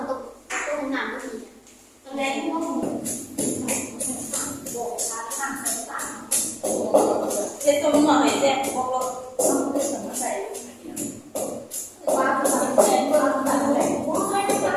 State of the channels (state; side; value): identical; both; correlation 1.00